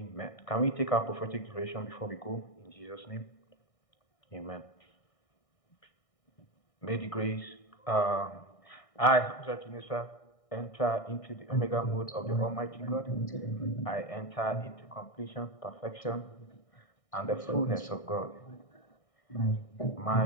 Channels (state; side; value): late; right; 1.6 ms